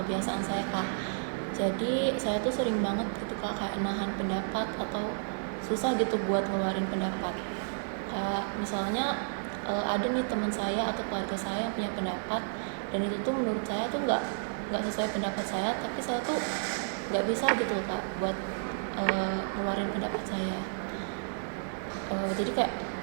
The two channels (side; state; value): left; silent; digital silence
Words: saya kak. Jadi saya tuh sering banget gitu kak kayak nahan pendapat atau susah gitu buat ngeluarin pendapat. Kayak misalnya ada nih teman saya atau keluarga saya yang punya pendapat dan itu tuh menurut saya tuh nggak sesuai pendapat saya, tapi saya tuh nggak bisa gitu kak buat ngeluarin pendapat saya. Jadi kayak